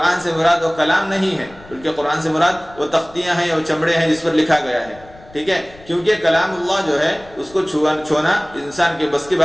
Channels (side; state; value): left; noise; rumble, 23 dB below the sound